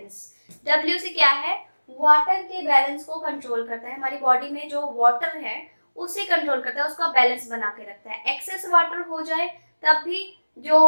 W से क्या है? वाटर के बैलेंस को कंट्रोल करता है। हमारी बॉडी में जो वाटर है उसे कंट्रोल करता है, उसका बैलेंस बना के रखता है। एक्सेस वाटर हो जाए तब भी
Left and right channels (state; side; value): inverted; both; correlation -1.00